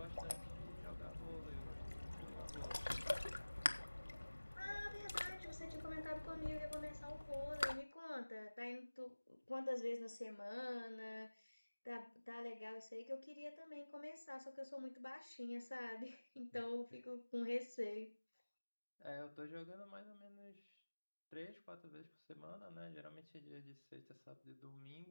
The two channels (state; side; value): inverted; both; correlation -1.00